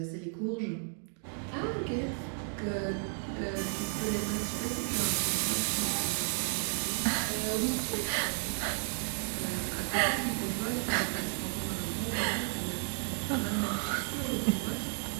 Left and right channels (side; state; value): left; silent; 56 dB below the other